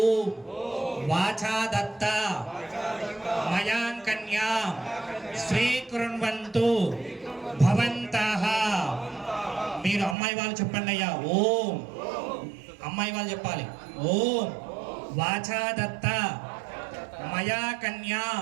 వాచా దత్త మయాం కన్యా స్వీకృణ్వంతు భవంతః. మీరు అమ్మాయి వాళ్ళు చెప్పండి అయ్యా. ఓం అమ్మాయి వాళ్ళు చెప్పాలి. ఓం వాచా దత్త మయా కన్యా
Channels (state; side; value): drops out; left; at 10.2 s